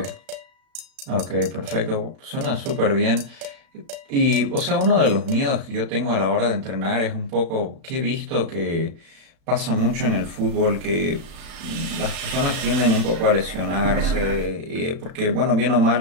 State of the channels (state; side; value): late; left; 36 ms